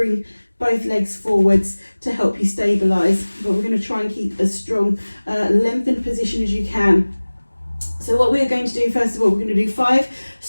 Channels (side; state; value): both; inverted; correlation -1.00